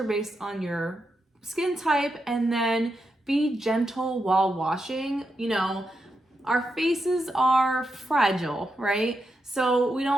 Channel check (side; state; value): both; normal; correlation 0.85